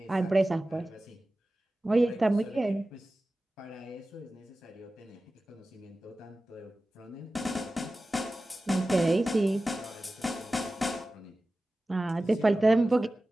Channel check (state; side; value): normal; both; correlation 0.95